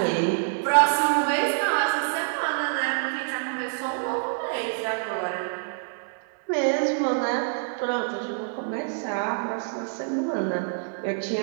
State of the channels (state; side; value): silent; left; digital silence